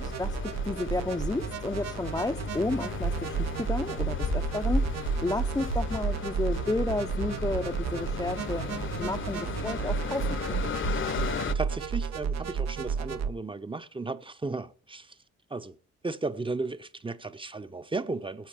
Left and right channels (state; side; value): normal; both; correlation 0.61